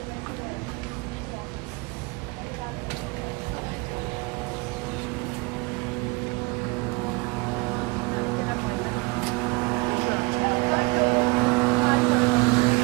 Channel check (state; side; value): quieter; left; 27.0 dB